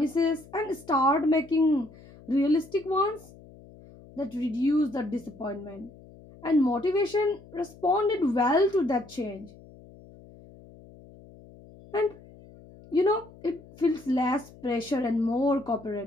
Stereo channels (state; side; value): noise; left; hum, 22 dB below the sound